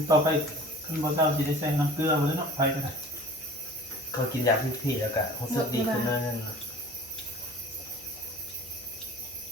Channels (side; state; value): both; normal; correlation 0.44